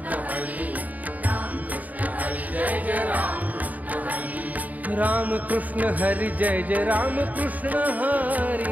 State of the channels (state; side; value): late; left; 0.076 ms